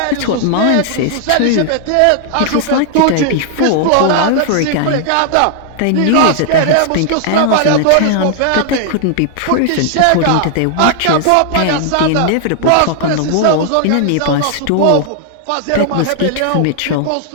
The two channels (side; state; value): both; different; correlation 0.00